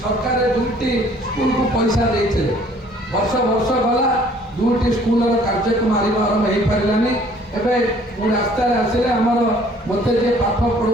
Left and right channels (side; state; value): both; normal; correlation 0.57